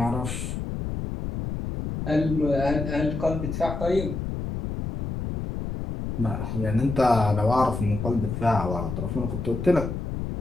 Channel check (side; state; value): left; noise; rumble, 5 dB below the sound